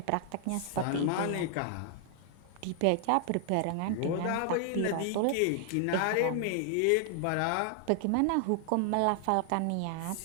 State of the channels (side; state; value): both; different; correlation 0.00